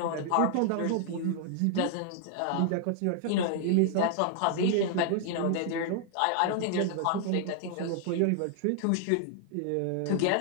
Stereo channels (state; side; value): different; both; correlation 0.00